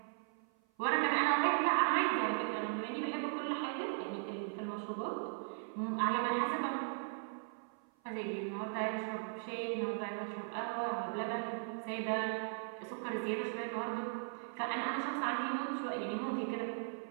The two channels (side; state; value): left; silent; 52 dB below the other